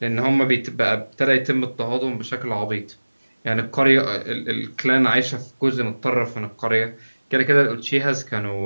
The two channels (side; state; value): both; inverted; correlation -1.00